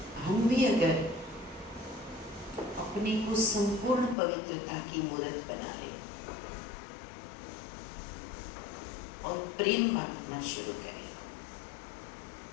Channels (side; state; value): right; drops out; at 4.2 s